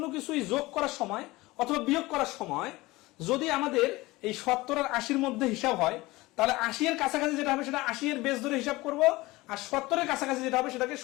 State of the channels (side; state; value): right; quieter; 20.4 dB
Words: কিছুই যোগ করার সময় অথবা বিয়োগ করার সময় যদি আমাদের এই 70 আর 80-র মধ্যে হিসাব হয়, তাহলে 80 এর কাছাকাছি যেটা হবে সেটা 80 এর বেস ধরে হিসাব করব, আর 70 এর কাছাকাছি যেটা হবে সেটাকে